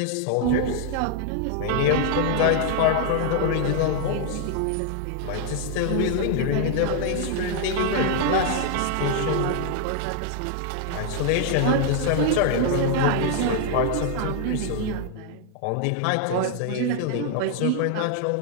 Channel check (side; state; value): both; different; correlation 0.00